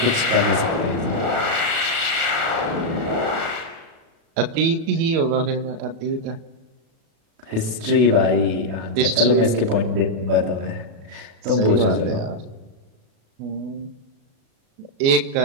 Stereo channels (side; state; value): left; late; 36 ms